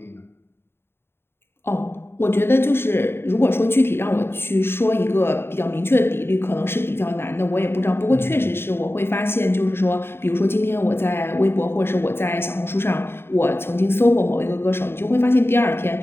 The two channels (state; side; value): late; right; 0.11 ms